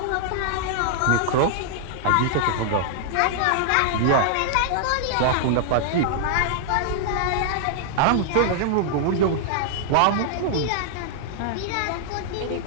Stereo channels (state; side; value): different; both; correlation -0.01